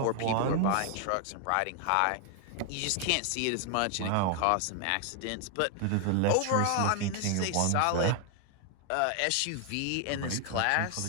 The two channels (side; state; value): both; different; correlation 0.00